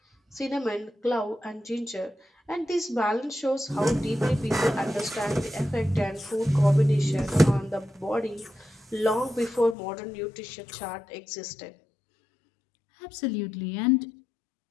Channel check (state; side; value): drops out; right; at 9.8 s